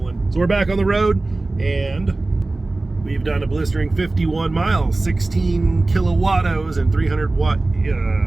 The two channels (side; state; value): left; quieter; 3.1 dB